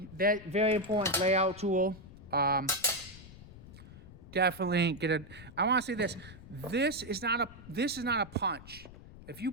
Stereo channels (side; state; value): left; noise; rumble, 17 dB below the sound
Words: that very important layout tool. Definitely get it. I want to say this. This is not a punch. If you